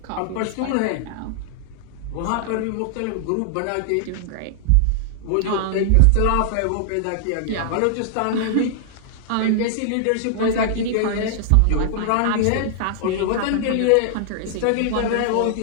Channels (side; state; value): both; different; correlation -0.01